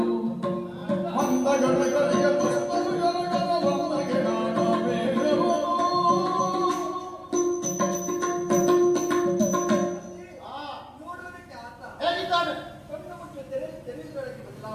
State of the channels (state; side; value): identical; both; correlation 1.00